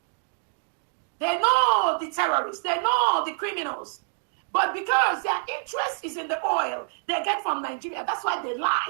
They know the terrorists, they know the criminals. But because their interest is in the oil they get from Nigeria, that's why they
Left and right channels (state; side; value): silent; left; digital silence